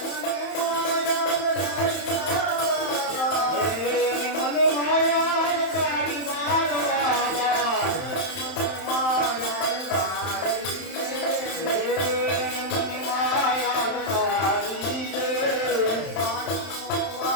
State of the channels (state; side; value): late; right; 31 ms